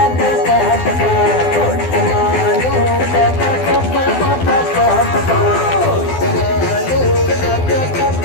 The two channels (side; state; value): right; late; 12 ms